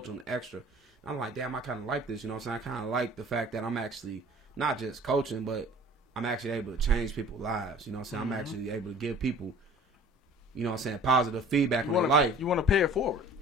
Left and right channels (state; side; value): normal; both; correlation 0.48